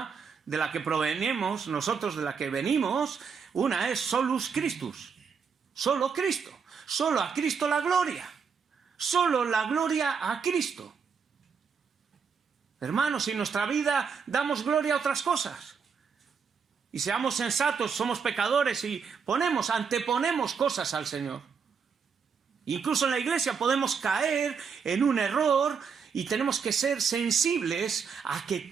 de la que provenimos, nosotros de la que venimos. Una es solus Christus. Solo Cristo. Solo a Cristo la gloria. Solo la gloria a Cristo. Hermanos, si en nuestra vida damos gloria a otras cosas, y seamos sensatos, somos pecadores y anteponemos cosas al Señor. Incluso en la iglesia podemos caer en un error y tenemos que ser sensibles a que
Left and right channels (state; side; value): quieter; left; 6.1 dB